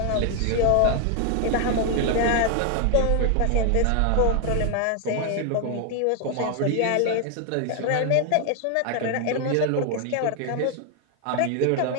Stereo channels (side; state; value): both; different; correlation 0.00